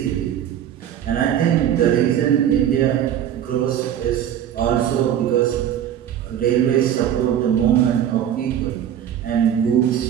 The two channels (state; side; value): quieter; left; 10.1 dB